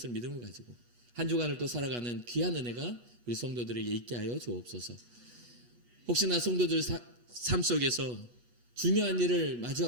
믿음을 가지고 한 주간을 또 살아가는 귀한 은혜가 우리 성도들에게 있게 하여 주옵소서. 혹시나 성도들 삶 속에서 중요한 일을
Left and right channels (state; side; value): late; left; 8.3 ms